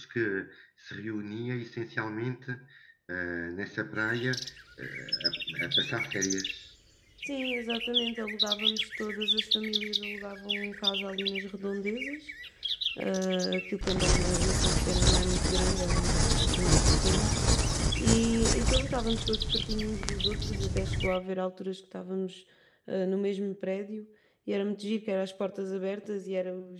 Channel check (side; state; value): both; identical; correlation 1.00